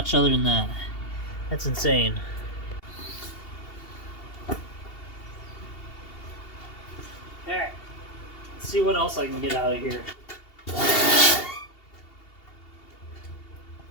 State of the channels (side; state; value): right; late; 2.7 ms